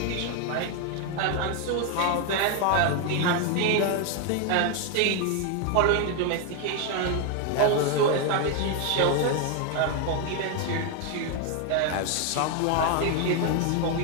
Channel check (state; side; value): different; both; correlation 0.01